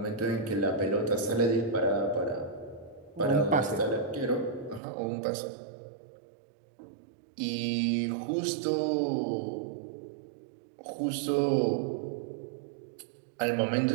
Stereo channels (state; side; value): drops out; left; at 4.8 s